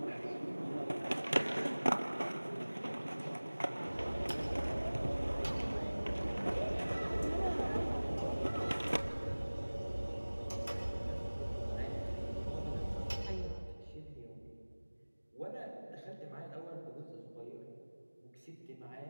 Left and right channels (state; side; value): inverted; both; correlation -1.00